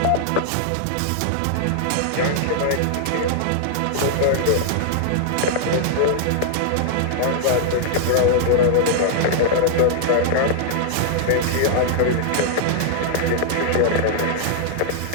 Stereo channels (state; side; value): different; both; correlation -0.01